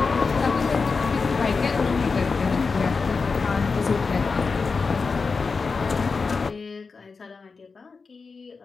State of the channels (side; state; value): right; quieter; 4.7 dB